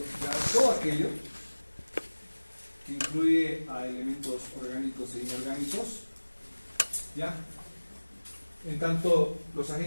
todo aquello que incluye a elementos orgánicos e inorgánicos, ¿ya? En tanto, los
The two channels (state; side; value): inverted; both; correlation -1.00